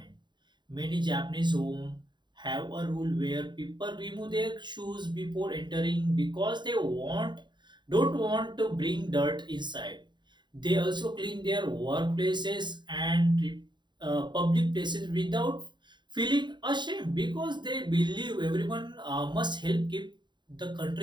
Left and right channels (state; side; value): late; left; 0.22 ms